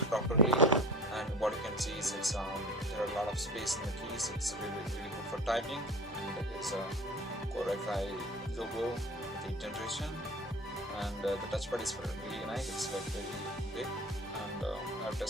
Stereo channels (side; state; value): both; normal; correlation 0.39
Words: properly, and what you can see is there are a lot of space in the keys. It's really good for typing, and there's a Core i5 logo with 8th generation, and the touchpad is really nice. It's like very big, and I've